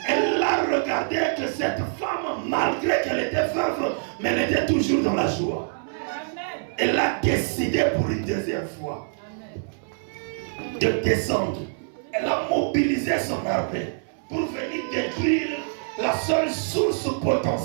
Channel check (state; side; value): silent; left; 62 dB below the other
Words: elle a regardé que cette femme, malgré qu'elle était veuve, mais elle était toujours dans la joie. Elle a décidé pour une deuxième fois de descendre. Elle a mobilisé son armée pour venir détruire la seule source